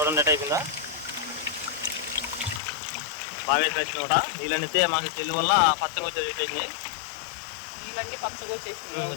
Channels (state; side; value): drops out; right; at 2.6 s